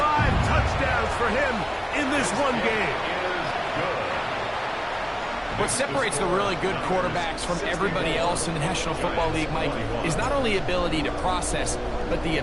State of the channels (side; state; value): both; identical; correlation 1.00